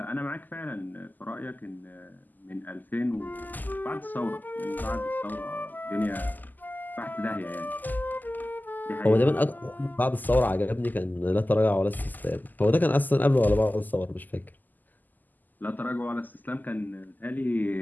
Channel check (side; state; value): right; late; 0.085 ms